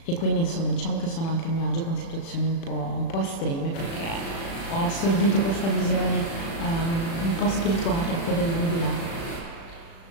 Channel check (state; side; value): late; right; 36 ms